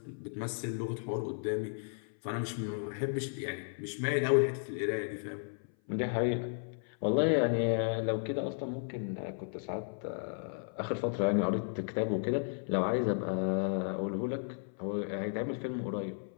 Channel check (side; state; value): right; silent; 55 dB below the other